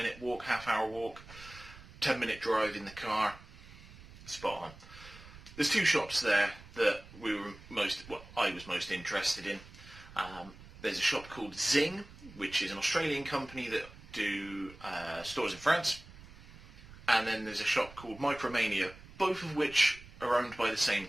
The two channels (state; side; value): noise; right; rumble, 18 dB below the sound